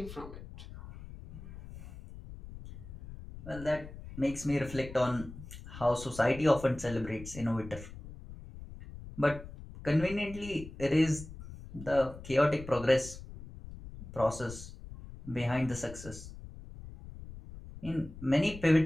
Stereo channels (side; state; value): left; noise; rumble, 14 dB below the sound